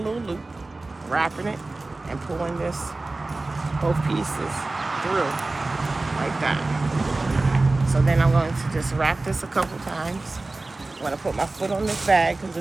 loop, wrapping it and pulling this, both pieces through like that. So then I'm going to just wrap this a couple times. I'm gonna put my foot on this bag because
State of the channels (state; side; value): quieter; left; 3.2 dB